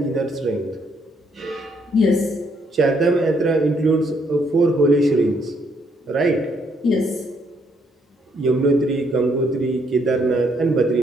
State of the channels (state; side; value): normal; both; correlation 0.72